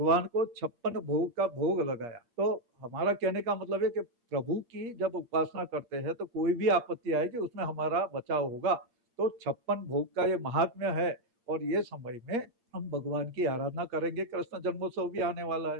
को 56 भोग का भोग लगाया। तो हमारा कहने का मतलब है कि प्रभु की जब उपासना करते हैं तो कोई भी आपत्ति आएगी उसमें हमारा बचाव होगा। तो 56 भोग का ये महात्म्य है, और ये समय में हम भगवान की आराधना करेंगे। कृष्ण जन्मोत्सव भी आने वाला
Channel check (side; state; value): left; late; 8.5 ms